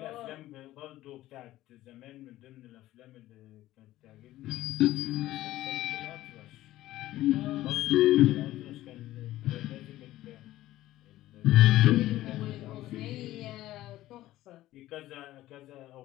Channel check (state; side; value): quieter; right; 15.4 dB